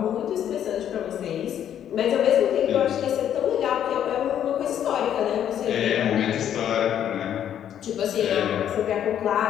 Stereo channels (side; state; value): right; quieter; 10.0 dB